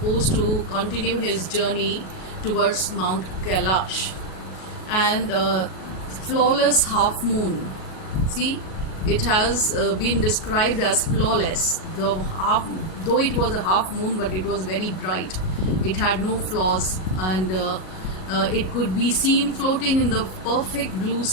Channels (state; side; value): late; right; 38 ms